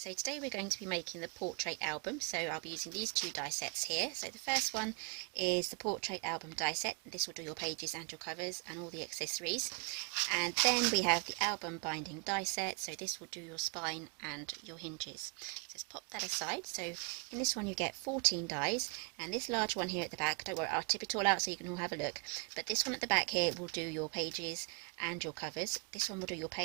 today we're going to be making the portrait album. So I'll be using these two die sets here. So the first one is the portrait album die set. This will do your pages and your covers and all the accessories. And then we have the album binding die set. So this will do your spine and your hinges. So let's pop that aside. So in this one you get 14 dies, and this large one here at the back, don't worry, I'll tip it all out so you can all have a look. But this one at the back here will do your pages and your covers. This one will do your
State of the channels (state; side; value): quieter; left; 35.7 dB